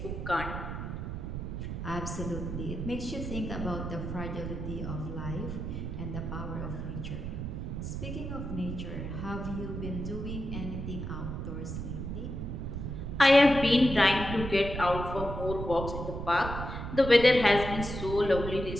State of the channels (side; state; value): right; noise; rumble, 5 dB below the sound